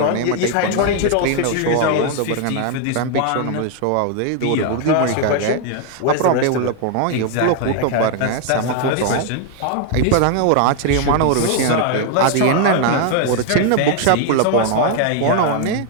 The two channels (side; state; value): both; different; correlation 0.00